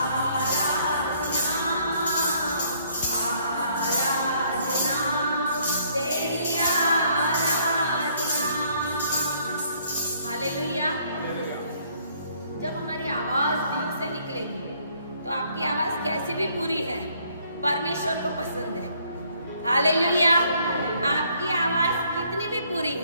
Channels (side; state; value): both; inverted; correlation -0.64